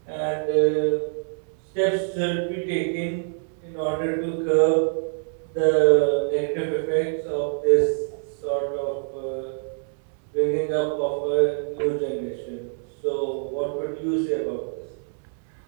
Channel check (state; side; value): silent; left; 59 dB below the other